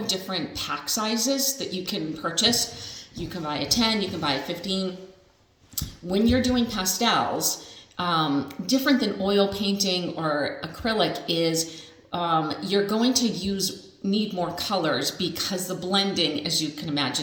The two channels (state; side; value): identical; both; correlation 1.00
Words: different pack sizes that you can purchase. You can buy a 10, you can buy a 15. When you're doing pastels, different than oil painting or acrylic is you're going to need more colors because the blending, as you can